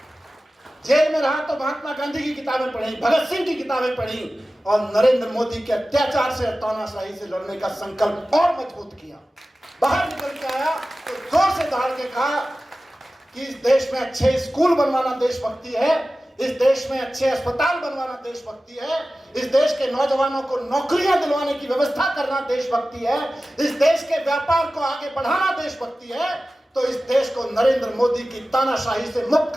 जेल में रहा तो महात्मा गांधी की किताबें पढ़ी, भगत सिंह की किताबें पढ़ी और नरेंद्र मोदी के अत्याचार से, तानाशाही से लड़ने का संकल्प और मजबूत किया। बाहर निकल के आया तो जोर से दहाड़ के कहा कि इस देश में अच्छे स्कूल बनवाना देशभक्ति है, इस देश में अच्छे अस्पताल बनवाना देशभक्ति है, इस देश के नौजवानों को नौकरियां दिलवाने की व्यवस्था करना देशभक्ति है, इस देश के व्यापार को आगे बढ़ाना देशभक्ति है, तो इस देश को नरेंद्र मोदी की तानाशाही से मुक्त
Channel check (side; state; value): both; normal; correlation 0.96